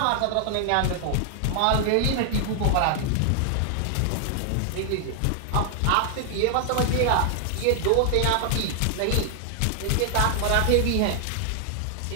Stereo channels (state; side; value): different; both; correlation 0.00